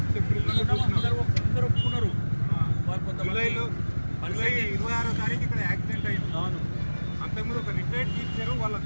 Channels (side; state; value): both; inverted; correlation -1.00